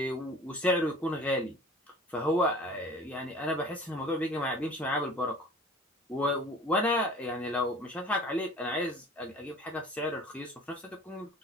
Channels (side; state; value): both; normal; correlation 0.45